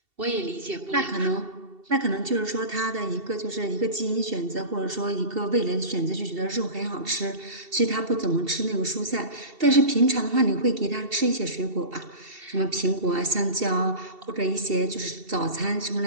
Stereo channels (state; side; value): late; left; 2.7 ms